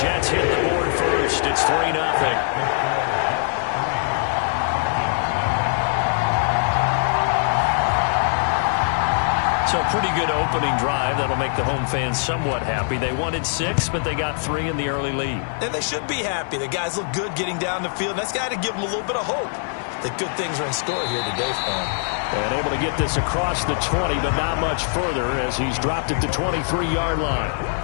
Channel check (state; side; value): silent; right; digital silence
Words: Jets hit the board first. It's 3-0. So pretty good opening drive. That'll make the home fans somewhat happy. They wanted 6, but they got 3 in the early lead. And they should be happy. The guys look good getting down the field. That's got to give them a little bit of hope that good things are in store here today for him. And able to get this across the 20, but not much further as he's dropped at the 23-yard line.